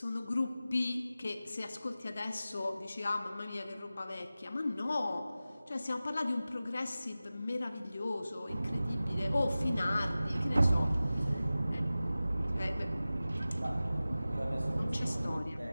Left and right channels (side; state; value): both; inverted; correlation -0.96